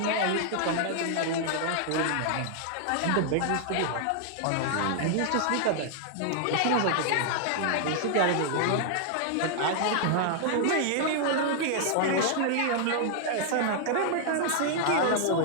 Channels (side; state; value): both; different; correlation -0.01